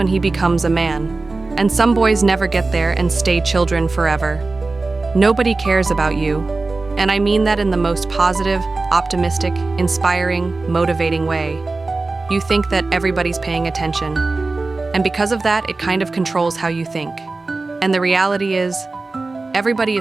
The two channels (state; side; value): quieter; left; 3.5 dB